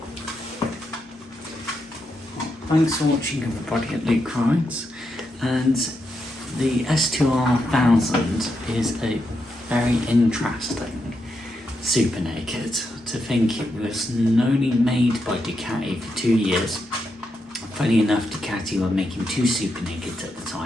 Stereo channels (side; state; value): both; normal; correlation 0.83